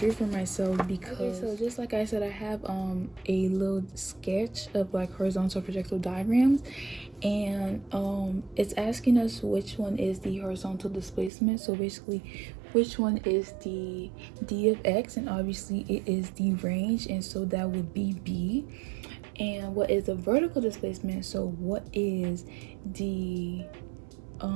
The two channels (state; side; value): drops out; left; at 11.3 s